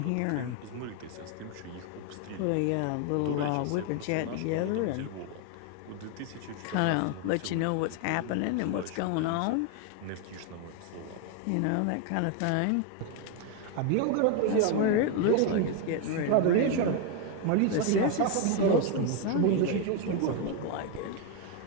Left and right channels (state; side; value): different; both; correlation 0.01